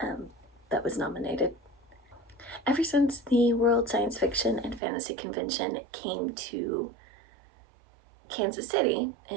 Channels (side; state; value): left; drops out; at 4.8 s